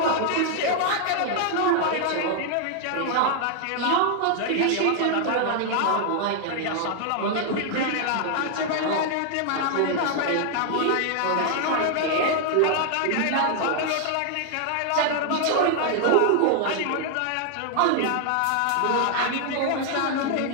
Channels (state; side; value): different; both; correlation 0.00